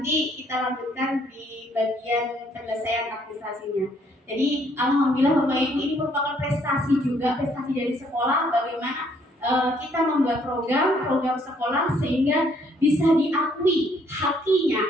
kita lanjutkan di bagian penyelesaian administrasinya. Jadi alhamdulillah Bapak Ibu ini merupakan prestasi juga, prestasi dari sekolah bagaimana kita membuat program sekolah sehingga bisa diakui hak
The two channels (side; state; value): both; normal; correlation 0.66